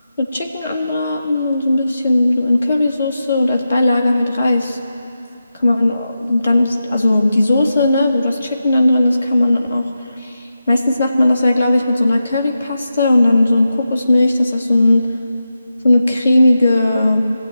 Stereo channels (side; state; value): both; inverted; correlation -0.90